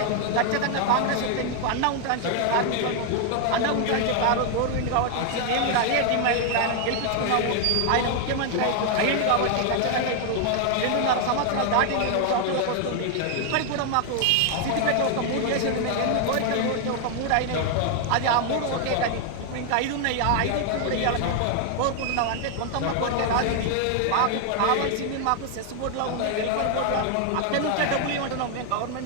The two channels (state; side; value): different; both; correlation 0.00